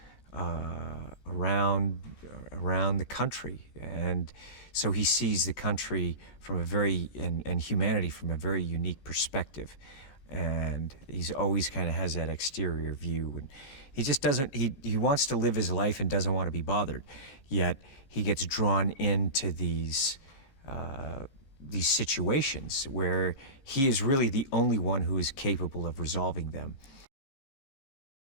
around the country, and so he sees the country from and humanity from a very unique perspective. And he's always kind of has that exterior view, and he just doesn't. He wants to live his life and doesn't want to be bothered. Yet he gets drawn into these situations where he is really the only one who is capable of resolving them.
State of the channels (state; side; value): late; right; 17 ms